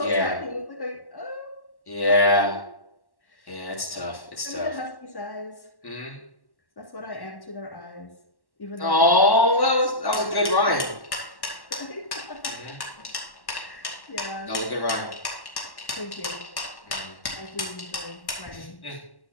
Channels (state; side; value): late; right; 1.1 ms